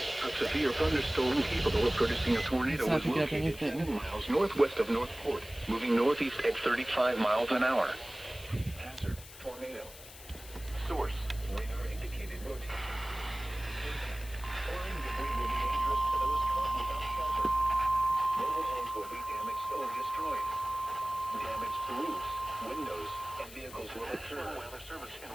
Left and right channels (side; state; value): left; noise; hiss, 16 dB below the sound